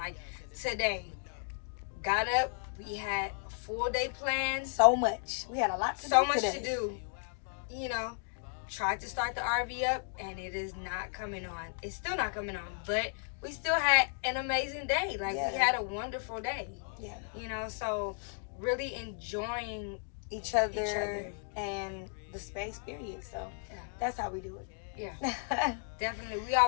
today, got up, we had a full day plan. So much. We had a lot to do. So much to do. Tried to start the RV up and it is not coming on. It's still not coming on, but we still had an amazing day. We had a wonderful day. Yeah. So really enjoying each other and the space, period. So that's how we do it. Yeah. Definitely. We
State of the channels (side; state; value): right; silent; 55 dB below the other